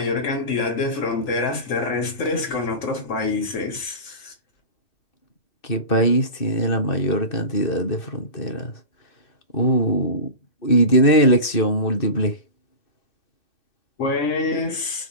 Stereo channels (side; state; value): right; late; 2.6 ms